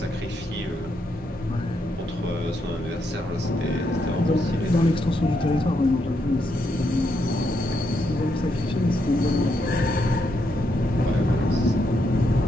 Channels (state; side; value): normal; both; correlation 0.79